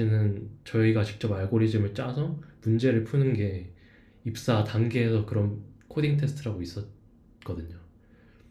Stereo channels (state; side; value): identical; both; correlation 1.00